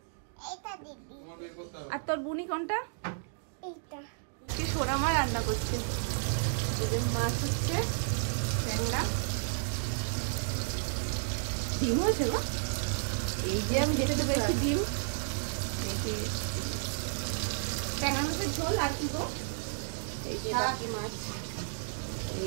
এটা দিবি। আর তোর বুনি কোনটা? এইটা কি সোনা মা রান্না করছে, এই যে মাছ হচ্ছে, ট্যাংরা, ডিম হয়েছে গো, এই যে আমি যেটা পেয়েছি ডিম, এই যে ট্যাংরা মাছের ঝোল আর কি গো, এই যে বাকি মাছ,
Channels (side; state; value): left; silent; digital silence